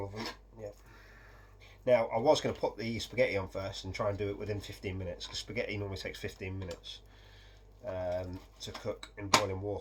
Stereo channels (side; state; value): both; identical; correlation 1.00